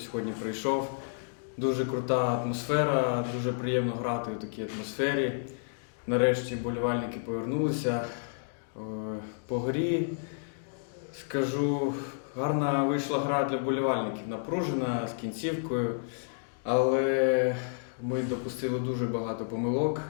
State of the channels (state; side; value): silent; right; digital silence